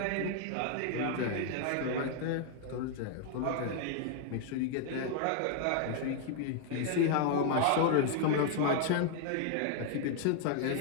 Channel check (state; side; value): different; both; correlation 0.00